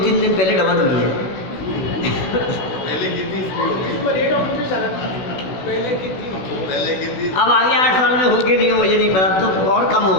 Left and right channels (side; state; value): right; late; 16 ms